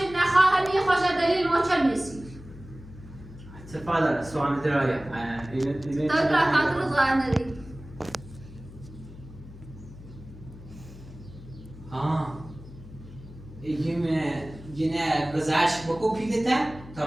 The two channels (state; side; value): noise; left; hum, 16 dB below the sound